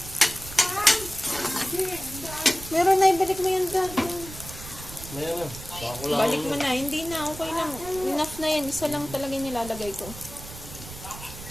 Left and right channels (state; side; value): noise; right; rumble, 13 dB below the sound